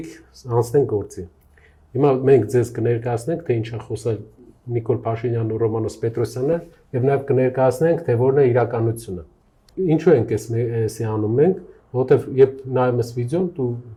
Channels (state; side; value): identical; both; correlation 1.00